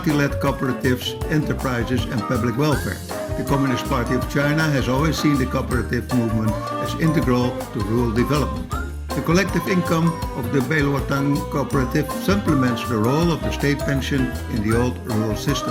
cooperatives, enterprises and public welfare. The Communist Party of China has always seen the cooperative movement as integral to rural development. The collective income of the Beiluotang cooperative supplements the role of the state pension in the old rural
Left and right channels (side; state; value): both; identical; correlation 1.00